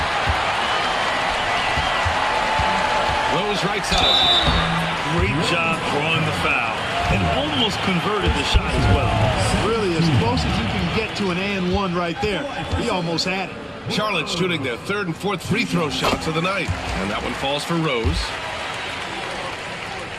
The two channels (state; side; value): identical; both; correlation 1.00